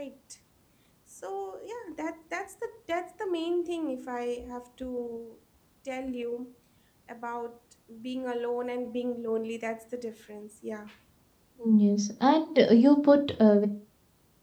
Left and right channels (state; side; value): identical; both; correlation 1.00